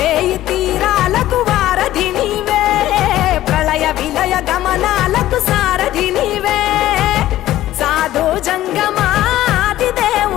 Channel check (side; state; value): right; quieter; 14.3 dB